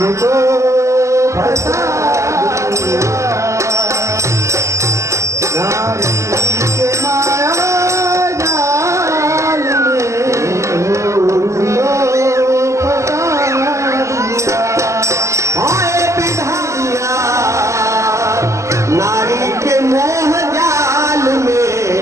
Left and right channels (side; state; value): left; late; 0.14 ms